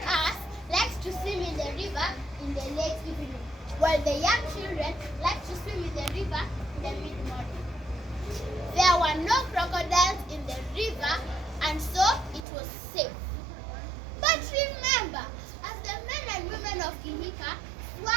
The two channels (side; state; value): left; drops out; at 12.5 s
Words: us liked to swim in the river in the late evening, while the young children liked to swim in the river in the mid-morning. There were no crocodiles in the river, and so it was safe. But remember, as the men and women of Kihika